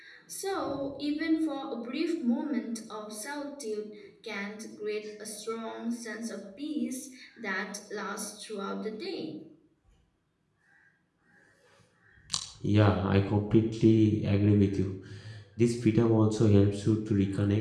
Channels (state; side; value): identical; both; correlation 1.00